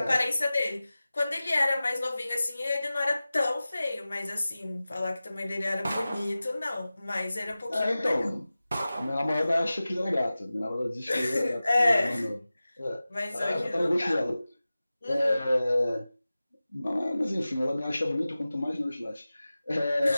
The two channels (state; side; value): inverted; both; correlation -0.96